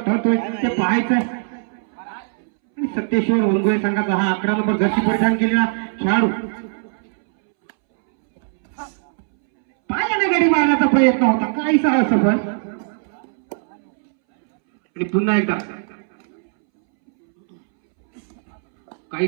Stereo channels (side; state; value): left; silent; 66 dB below the other